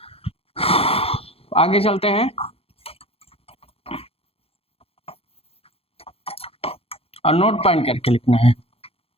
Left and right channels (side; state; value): right; late; 0.28 ms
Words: आगे चलते हैं और नोट पॉइंट करके लिखना है।